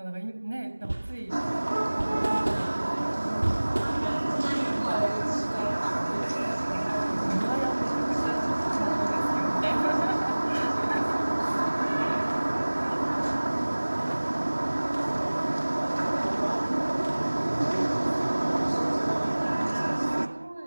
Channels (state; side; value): inverted; both; correlation -1.00